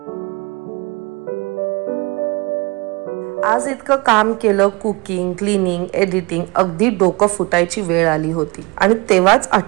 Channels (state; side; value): quieter; left; 26.8 dB